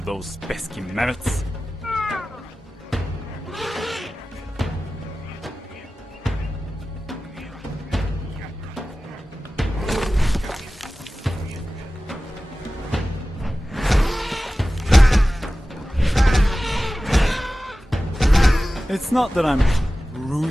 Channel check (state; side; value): normal; both; correlation 0.96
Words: those pesky mammoths. It's not that I'm